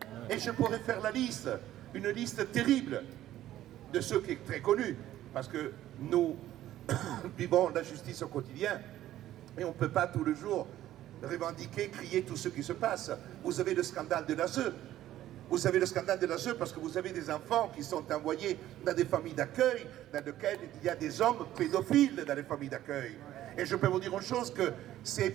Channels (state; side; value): quieter; left; 13.4 dB